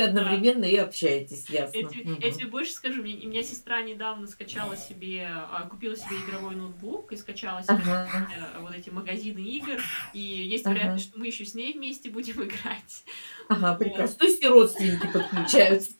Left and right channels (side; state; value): both; inverted; correlation -1.00